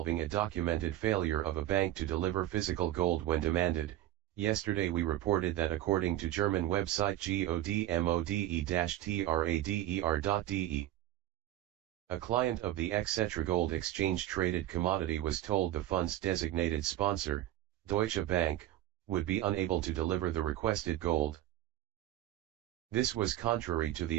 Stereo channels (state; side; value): quieter; left; 13.7 dB